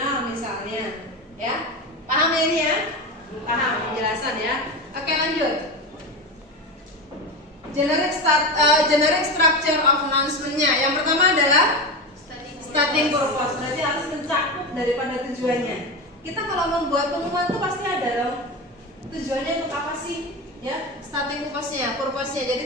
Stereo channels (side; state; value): both; normal; correlation 0.21